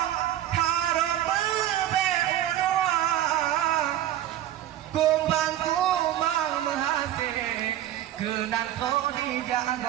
harum beunua kumbang menghase kenang kau di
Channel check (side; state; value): left; quieter; 12.4 dB